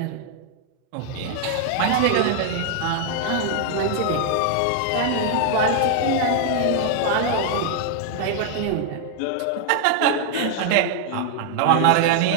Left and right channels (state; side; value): different; both; correlation 0.00